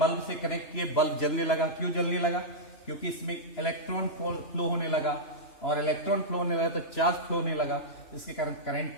से कनेक्ट किए, बल्ब जलने लगा। क्यों जलने लगा? क्योंकि इसमें इलेक्ट्रॉन फ्लो होने लगा, और इलेक्ट्रॉन फ्लो होने लगा तो चार्ज फ्लो होने लगा, इसके कारण करंट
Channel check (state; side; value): late; right; 3.0 ms